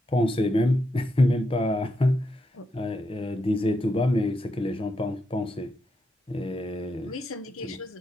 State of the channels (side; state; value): both; normal; correlation 0.83